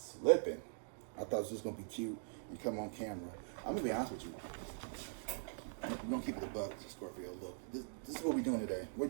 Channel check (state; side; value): silent; left; digital silence